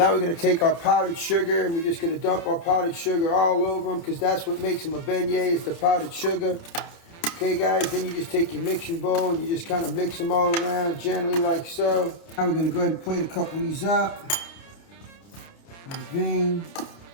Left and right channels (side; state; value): right; late; 29 ms